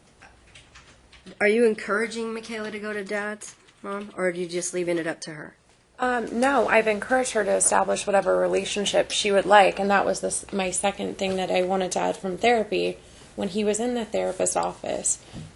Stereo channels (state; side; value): identical; both; correlation 1.00